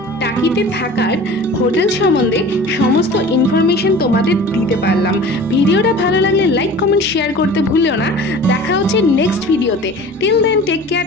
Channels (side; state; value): both; normal; correlation 0.40